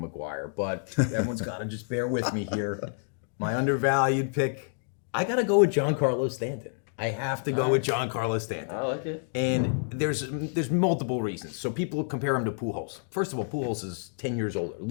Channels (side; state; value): right; silent; digital silence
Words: McGuire, but everyone's got to just bear with me here. My undervalued pick, I got to go with Giancarlo Stanton. I have to go with Giancarlo Stanton. I like it. And there's multiple reasons. So people compare him to Pujols. First of all, Pujols is 10 years older,